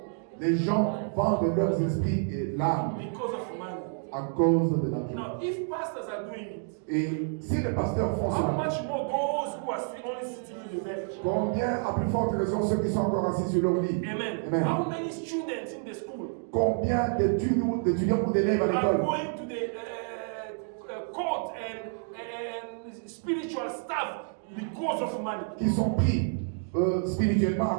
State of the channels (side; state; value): left; silent; 59 dB below the other